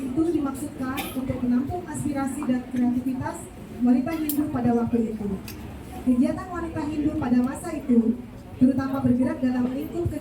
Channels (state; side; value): identical; both; correlation 1.00